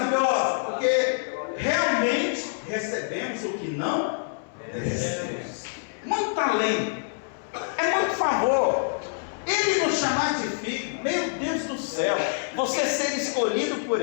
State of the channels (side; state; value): right; silent; 61 dB below the other